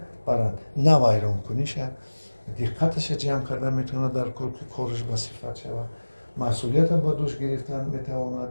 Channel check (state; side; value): inverted; both; correlation -1.00